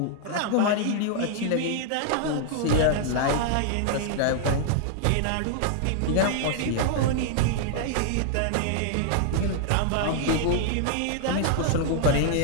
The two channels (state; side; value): different; both; correlation -0.01